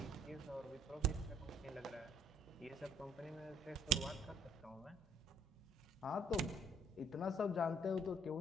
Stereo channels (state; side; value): normal; both; correlation 0.62